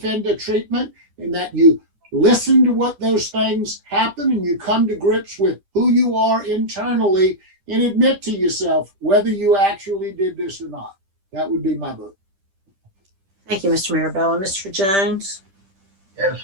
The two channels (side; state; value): left; late; 10 ms